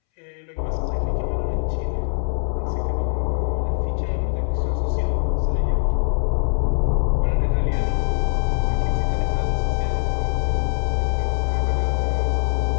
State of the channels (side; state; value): right; silent; 64 dB below the other